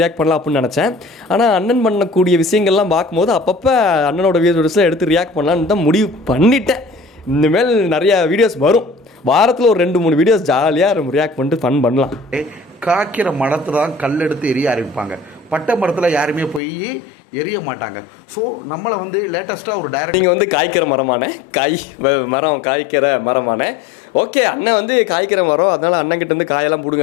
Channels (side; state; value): right; drops out; at 16.6 s